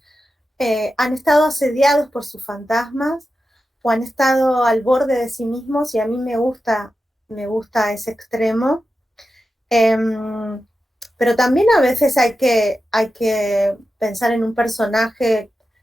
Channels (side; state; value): both; normal; correlation 0.91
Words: han estado asediados por sus fantasmas o han estado al borde de sí mismos, y a mí me gusta ese extremo. Pero también a veces hay que pensar en un personaje